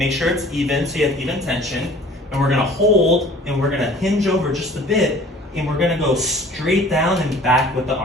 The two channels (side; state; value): both; normal; correlation 0.48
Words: sure it's even so you have even tension, and we're gonna hold and we're gonna hinge over just a bit and we're gonna go straight down and back with the